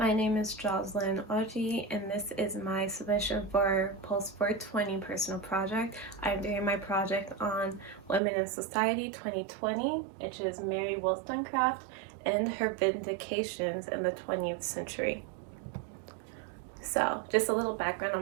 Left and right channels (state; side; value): drops out; left; at 8.2 s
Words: My name is Jocelyn Oji, and this is my submission for POLS 420 personal project. I'm doing my project on Women in Society 2020, which is Mary Wollstonecraft and her vindications in the 20th century. So, just a little background